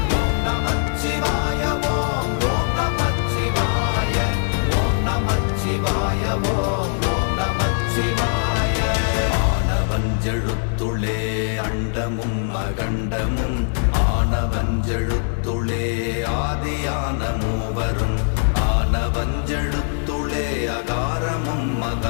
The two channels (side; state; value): right; silent; digital silence